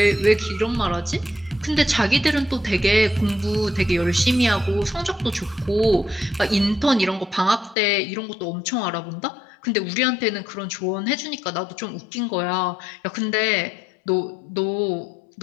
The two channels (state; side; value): drops out; right; at 7.8 s